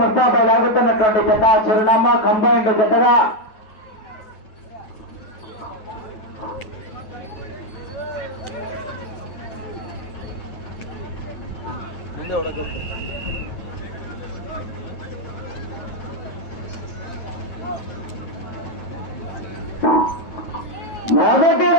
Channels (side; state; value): right; late; 9.2 ms